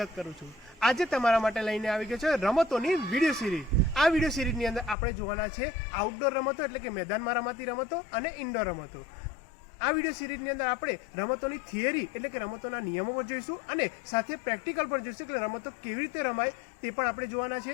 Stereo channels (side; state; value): right; drops out; at 5.0 s